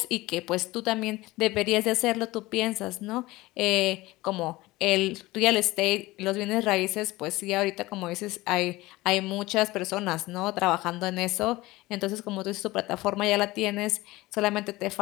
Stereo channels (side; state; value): right; quieter; 19.5 dB